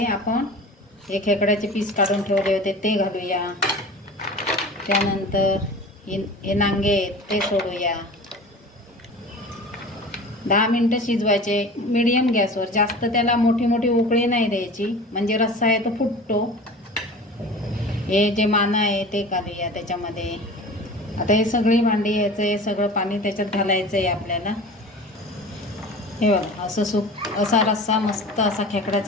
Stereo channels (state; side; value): normal; both; correlation 0.37